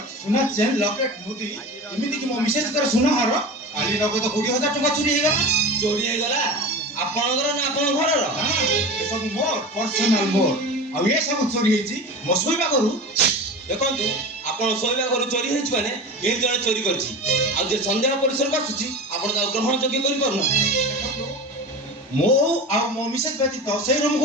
ସୁନା ଚେନ୍ ଲକେଟ୍ ମୁଦି ଏମିତିକି ମୋ ମିସେସଙ୍କର ସୁନା ହାର କାଲି ନଗଦ 20,000 ଟଙ୍କା ଚୋରି ହେଇଗଲା। ଚୋରି ହେଇଗଲା ଆପଣଙ୍କର ନା ଆପଣଙ୍କ ଘରର? ଏସବୁ ମୋର ପର୍ସନାଲ ମୋର। ଆଉ ଏ ସବୁ ଚୋରି ହେଇଛି ମୋ ଶୋଇବା ଘରୁ। ଦେଖନ୍ତୁ ଆପଣ ଶୋଇବା ଘରୁ ଚୋରି ହେଇଛି ମାନେ କେହି ଜଣେ ଚୋରି କରିଛି। ଆଉ ଯେ ସନ୍ଦେହ ପରିସରକୁ ଆସୁଛି ଆପଣ ତାକୁ ଗ୍ରହଣ ଯୋଗ୍ୟ କରିପାରୁନାହାନ୍ତି। ମୁଁ ଆଉ ମୋ ମିସେସ ବ୍ୟତୀତ ସେଇ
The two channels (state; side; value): normal; both; correlation 0.30